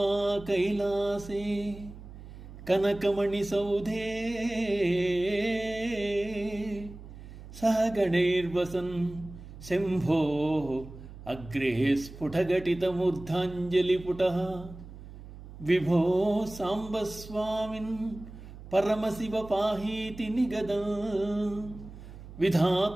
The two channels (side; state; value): right; noise; hum, 15 dB below the sound